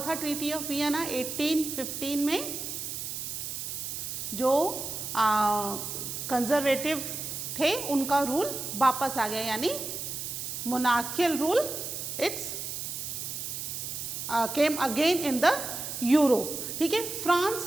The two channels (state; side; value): noise; right; hiss, 5 dB below the sound